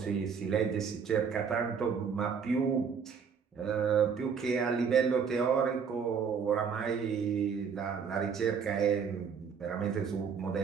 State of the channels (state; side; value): quieter; left; 6.5 dB